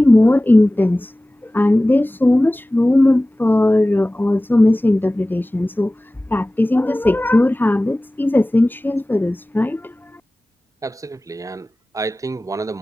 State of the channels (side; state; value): both; normal; correlation 0.98